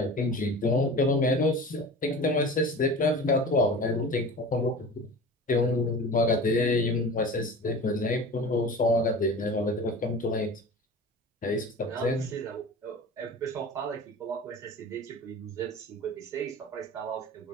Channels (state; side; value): normal; both; correlation 0.36